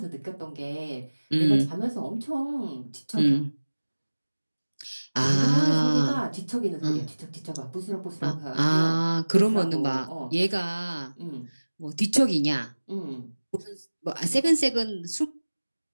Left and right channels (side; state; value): both; inverted; correlation -1.00